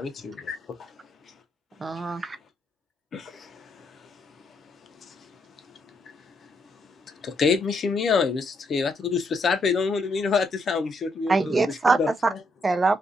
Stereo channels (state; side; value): normal; both; correlation 0.75